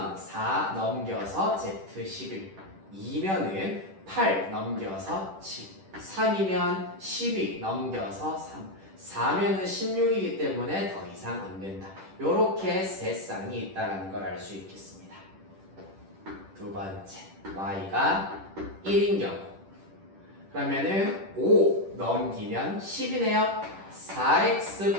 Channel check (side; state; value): left; late; 10 ms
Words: 4 넘겨서 z 11, 2면은 8 넘겨서 7, 3이면 12 넘겨서 3, 4면은 16이기 때문에 더 이상 안 된다. 요렇게 세 쌍이 있다는 걸 알 수 있겠습니다. 두 번째, y가 1인 경우 그러면은 5 넘기면 10이네요.